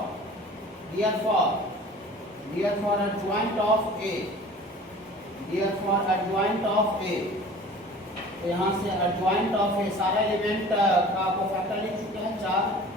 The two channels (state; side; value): normal; both; correlation 0.44